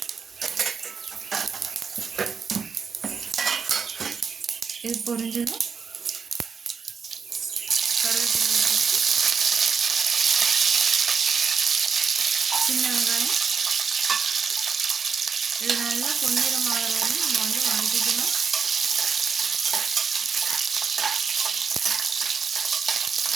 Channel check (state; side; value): quieter; left; 5.9 dB